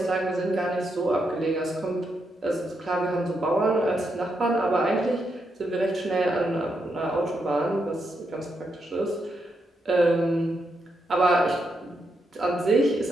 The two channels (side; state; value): both; normal; correlation 0.82